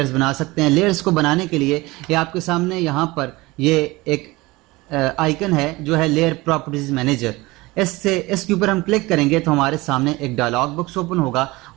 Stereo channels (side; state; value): left; quieter; 21.5 dB